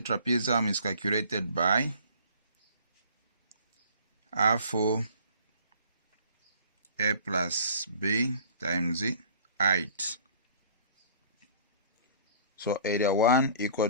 is calculated by half A plus B times height. So area 1 equal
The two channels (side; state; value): both; inverted; correlation -0.50